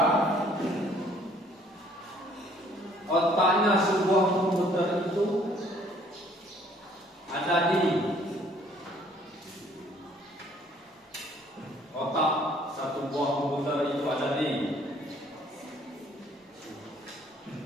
Otaknya sebuah komputer itu ada di otak satu buah komputer itu ada di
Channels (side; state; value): both; normal; correlation 0.60